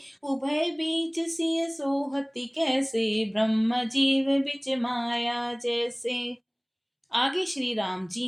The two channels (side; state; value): both; identical; correlation 1.00